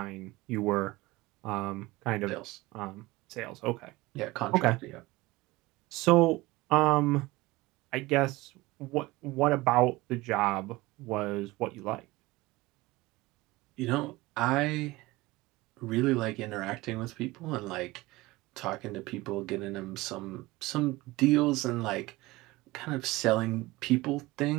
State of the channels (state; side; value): quieter; left; 20.3 dB